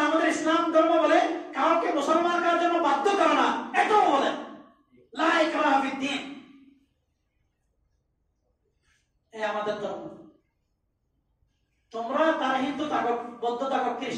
আমাদের ইসলাম ধর্ম বলে কাউকে মুসলমান করার জন্য বাধ্য করো না, এটাও বলে লা ইকরাহা ফিদ্দীন। এই আমাদের ধর্ম। তোমরা তারা হিন্দু থাকো, বৌদ্ধ থাকো,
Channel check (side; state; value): both; identical; correlation 1.00